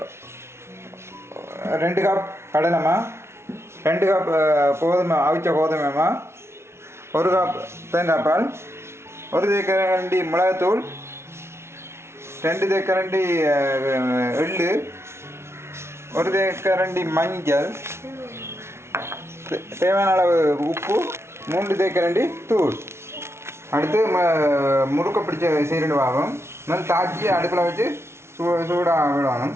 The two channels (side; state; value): left; late; 0.13 ms